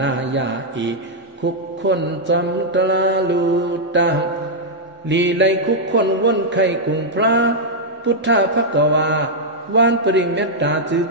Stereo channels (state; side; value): normal; both; correlation -0.05